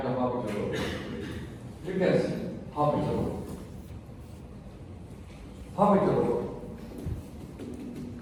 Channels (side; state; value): both; identical; correlation 1.00